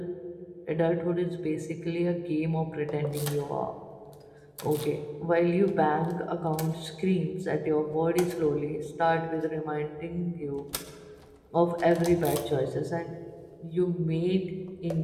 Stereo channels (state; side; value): identical; both; correlation 1.00